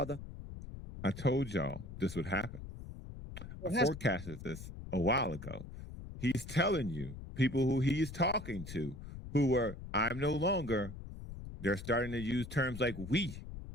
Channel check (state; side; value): noise; left; rumble, 11 dB below the sound